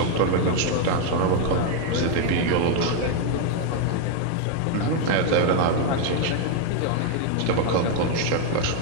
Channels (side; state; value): both; different; correlation 0.01